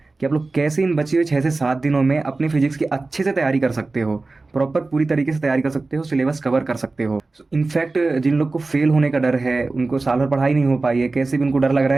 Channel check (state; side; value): quieter; left; 3.5 dB